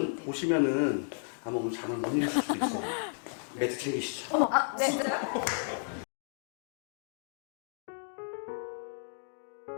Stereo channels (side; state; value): right; silent; digital silence